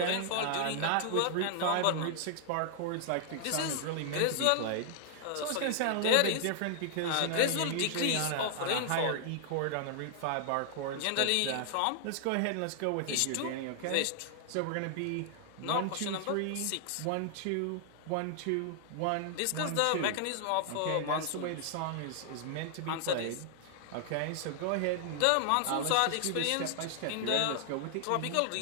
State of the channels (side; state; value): both; different; correlation -0.01